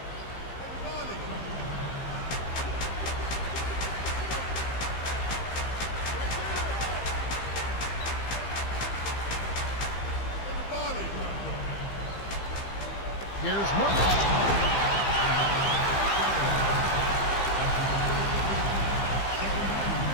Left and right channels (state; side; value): late; right; 15 ms